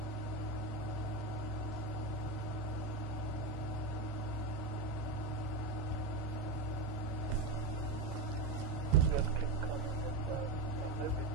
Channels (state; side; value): quieter; left; 3.3 dB